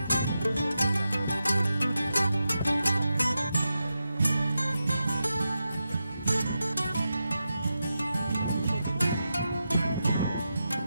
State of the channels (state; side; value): inverted; both; correlation -0.89